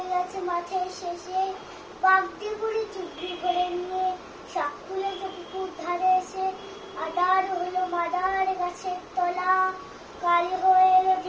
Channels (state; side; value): identical; both; correlation 1.00